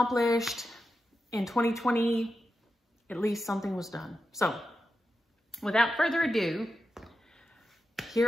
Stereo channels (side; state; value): both; normal; correlation 0.89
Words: In 2020, at least something was done. So without further ado,